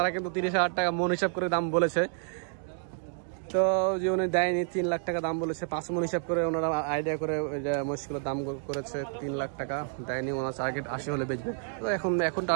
কিন্তু 30,000 টাকা মন হিসাব করে দাম বলেছে। তো যে উনি দেয়নি 3 লাখ টাকা দাম বলেছে, 5 মন হিসাব করে ওনারা আইডিয়া করে মহিষগুলোর দাম করেছে 3 লাখ টাকা দেয়নি। ওনার টার্গেট 80 হলে বেচবে। তো এখন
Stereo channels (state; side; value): silent; left; 58 dB below the other